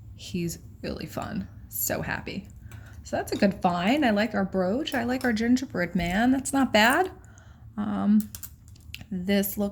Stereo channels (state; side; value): identical; both; correlation 1.00